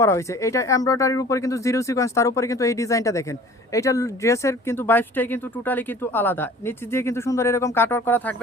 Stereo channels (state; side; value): normal; both; correlation 0.47